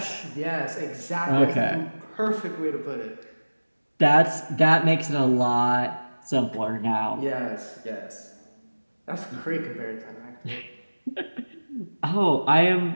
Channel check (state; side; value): inverted; both; correlation -1.00